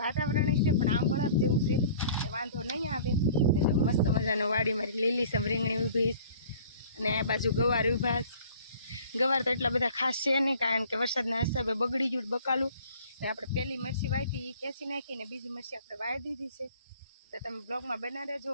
વાતાવરણ છે પણ આમ બરાબ જેવું છે વાંધો નહીં આવે ને જો મસ્ત મજાનું વાડી મારી લીલીસમ રીંગણી ઊભી અને આ બાજુ ગવાર ઊભા ગવાર તો એટલા બધા ખાસ છે નહીં કારણ કે વરસાદના હિસાબે બગડી ગયું બકાલું ને આપણે પહેલી મરચી વાવી એ ખેંચી નાખીને બીજી મરચી આપણે વાવી દીધી છે। તો તમે બ્લોગમાં બના રહેજો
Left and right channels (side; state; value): both; inverted; correlation -0.49